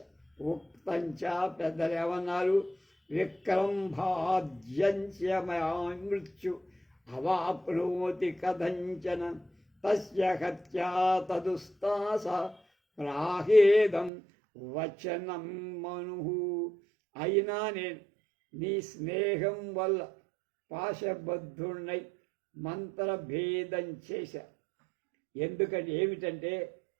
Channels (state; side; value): drops out; left; at 14.1 s